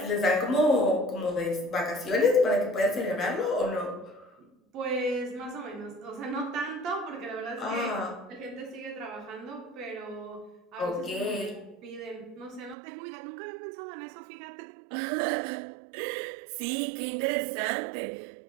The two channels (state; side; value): drops out; left; at 12.8 s